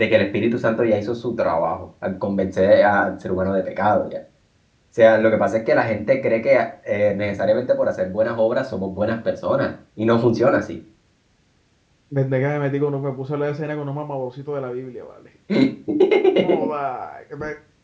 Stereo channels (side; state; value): both; identical; correlation 1.00